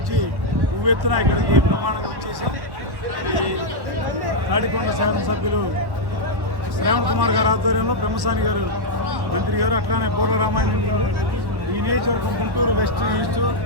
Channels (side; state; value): left; late; 1.1 ms